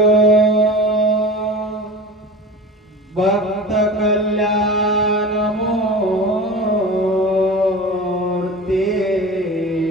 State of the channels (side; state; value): both; normal; correlation 0.34